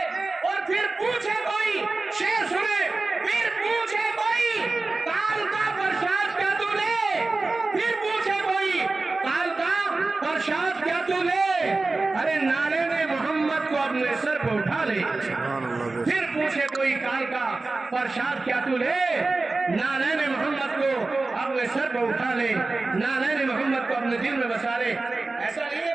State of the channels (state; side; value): quieter; left; 3.4 dB